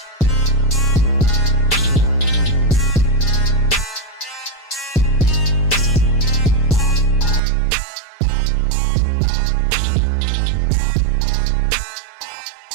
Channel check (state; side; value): drops out; left; at 7.4 s